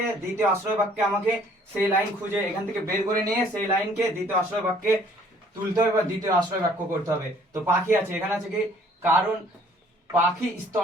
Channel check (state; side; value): normal; both; correlation 0.58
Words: দ্বিতীয় আশ্রয় বাক্যে আমাকে সেই লাইন খুঁজে এখান থেকে বের করে নিয়ে সেই লাইনকে দ্বিতীয় আশ্রয় বাক্যে তুলতে হবে বা দ্বিতীয় আশ্রয় বাক্য করতে হবে। তো পাখি আছে, এখানে আছে কি, কারণ পাখি